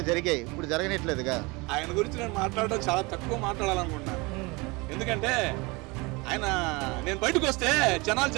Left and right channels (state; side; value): quieter; left; 25.7 dB